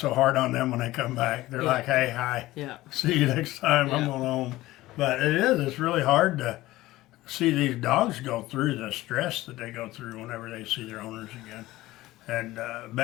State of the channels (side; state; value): right; quieter; 17.3 dB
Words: hard on them when they come back. They're like, hey, hi, Yeah. see you next time, I'm going home. But it's really hard to see these dogs go through the stress that they go through whenever they see their owners again. And